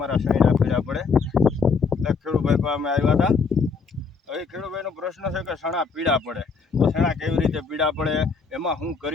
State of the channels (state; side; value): quieter; right; 5.1 dB